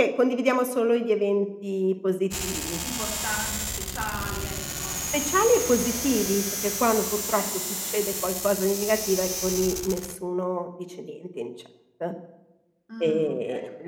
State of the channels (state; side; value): identical; both; correlation 1.00